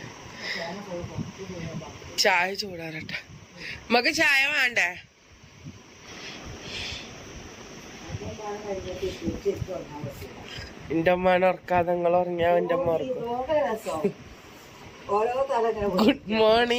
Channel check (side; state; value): both; identical; correlation 1.00